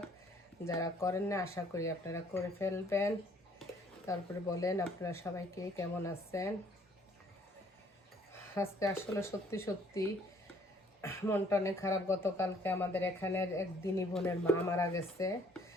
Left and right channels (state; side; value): normal; both; correlation 0.61